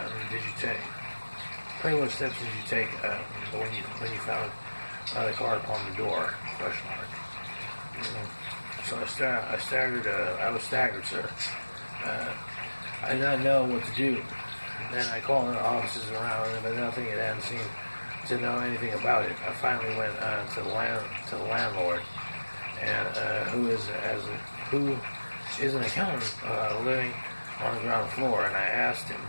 did you take? Pray, what steps did you take when you found the card upon the door? Question mark. So I was staggered, sir. I did not know what to do. Then I called the offices around, but nothing had hadn't seemed to know anything about it. I finally went to the landlord, and who is an accountant living on the ground floor, and I asked him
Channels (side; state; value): both; inverted; correlation -1.00